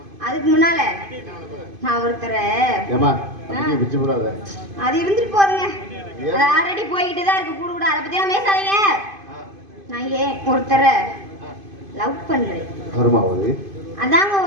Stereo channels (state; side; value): late; left; 2.5 ms